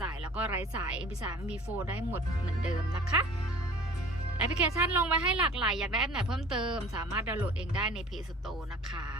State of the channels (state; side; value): normal; both; correlation 0.45